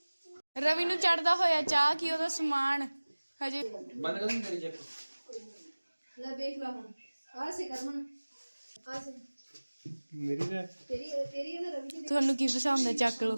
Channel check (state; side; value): inverted; both; correlation -1.00